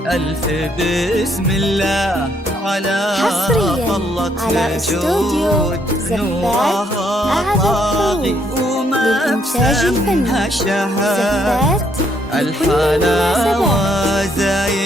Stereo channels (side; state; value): both; normal; correlation 0.71